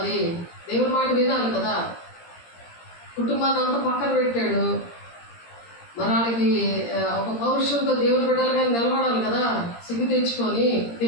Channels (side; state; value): right; late; 17 ms